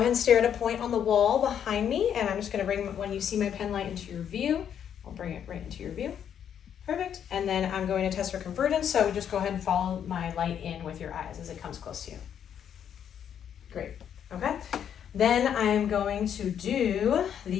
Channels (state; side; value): quieter; right; 8.9 dB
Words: and stare at a point on the wall behind me, and I'm just going to bring, when you see my pen light into your view, I'll bring it right into your view. Perfect. And then I'm going to test for convergence, so just go ahead and follow my light in with your eyes as it comes close to you. Great. Okay. Then I'm going to do